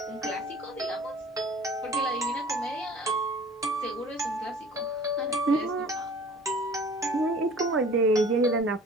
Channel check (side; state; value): both; normal; correlation 0.47